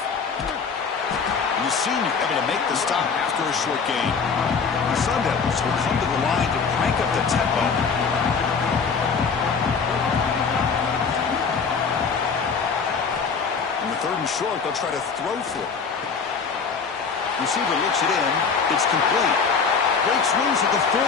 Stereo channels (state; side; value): quieter; right; 5.5 dB